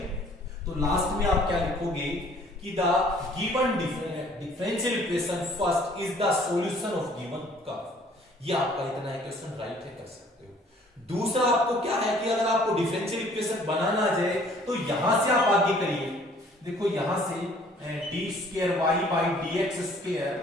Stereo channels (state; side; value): normal; both; correlation 0.56